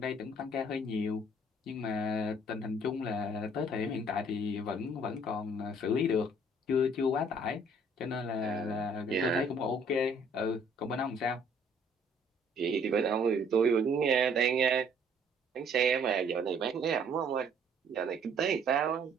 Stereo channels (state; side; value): normal; both; correlation 0.60